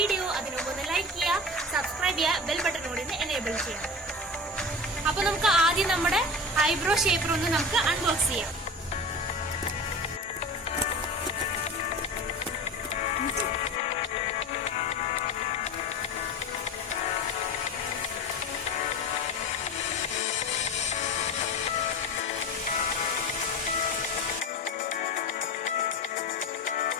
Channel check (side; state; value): both; normal; correlation 0.30